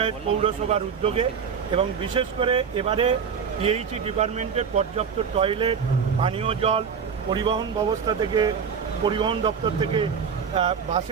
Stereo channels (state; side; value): quieter; left; 6.6 dB